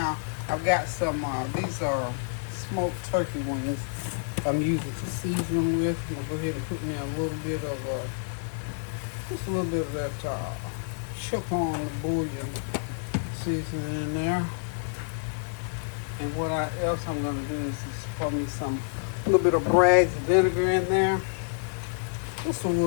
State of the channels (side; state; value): right; silent; digital silence